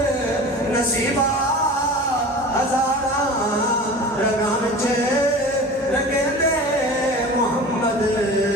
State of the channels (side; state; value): both; normal; correlation 0.37